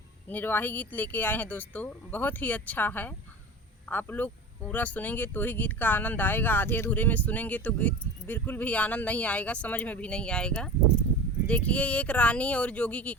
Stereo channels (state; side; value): normal; both; correlation 0.33